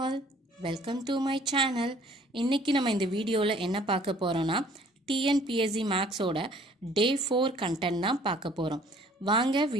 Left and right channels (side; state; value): both; normal; correlation 0.56